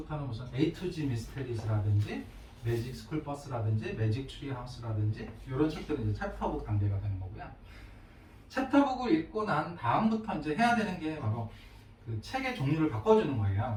무슨 A to G 미스테리스라든지 매직 스쿨 버스라든지 매직 트리 하우스라든지 이런 책들은 이제 챕터북 단계가 되는 거고요. 챕터북을 읽고 난 다음부터 이제 해야 되는 게 바로 그 책의 종류를 바꿔주는 거예요.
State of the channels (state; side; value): identical; both; correlation 1.00